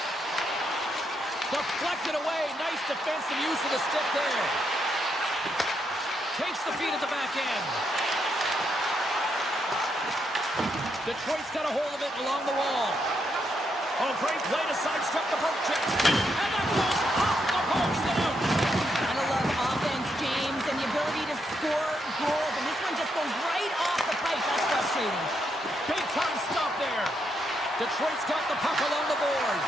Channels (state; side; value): normal; both; correlation 0.79